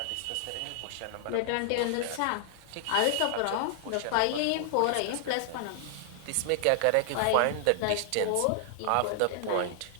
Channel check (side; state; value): both; different; correlation -0.01